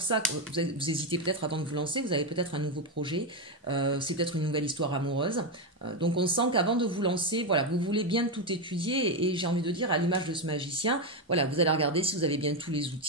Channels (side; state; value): both; normal; correlation 0.08